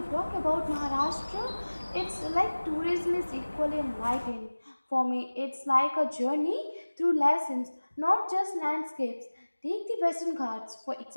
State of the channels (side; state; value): both; inverted; correlation -1.00